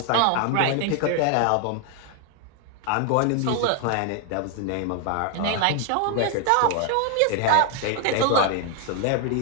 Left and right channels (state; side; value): different; both; correlation 0.00